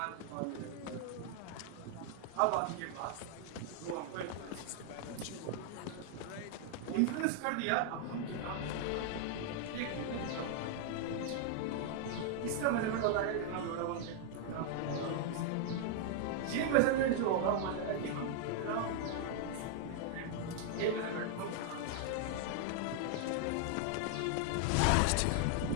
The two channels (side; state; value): both; different; correlation 0.00